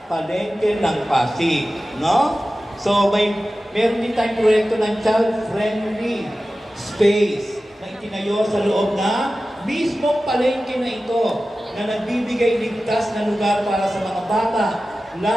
palengke ng Pasig. No? So, meron din tayong proyekto ng child-friendly space na itinayo sa loob na mismong palengke na ito, na nagbibigay ligtas na lugar para sa mga bata,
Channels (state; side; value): normal; both; correlation 0.95